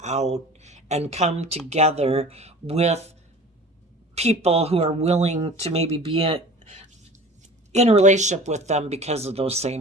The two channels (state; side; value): normal; both; correlation 0.41